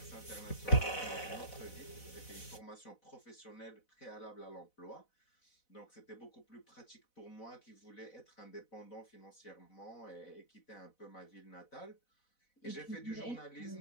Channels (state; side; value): late; right; 4.0 ms